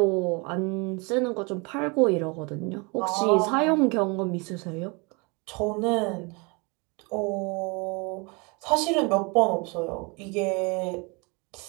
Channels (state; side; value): quieter; left; 30.0 dB